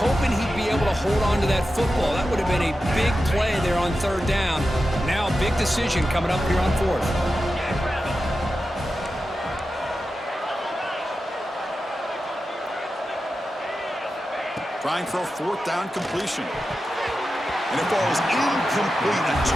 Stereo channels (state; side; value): normal; both; correlation 0.91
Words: he'd be able to hold on to that football. That would have been a big play there on 3rd down. Now big decision coming up here on fourth. Trying for a fourth down completion. And it falls incomplete. A